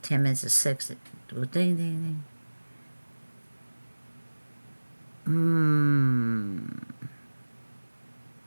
10 minutes to 6, it will ding, ding, ding.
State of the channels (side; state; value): both; inverted; correlation -1.00